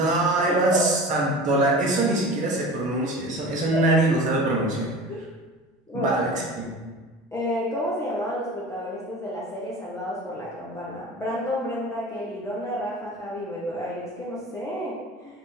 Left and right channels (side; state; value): both; normal; correlation 0.37